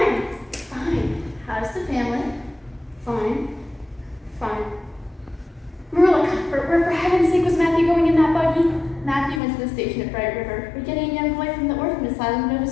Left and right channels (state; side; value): drops out; right; at 9.4 s